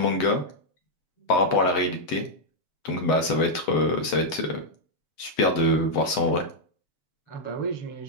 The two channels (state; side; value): late; right; 8.0 ms